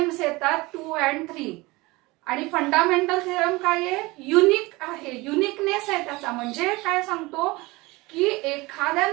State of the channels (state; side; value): quieter; left; 22.5 dB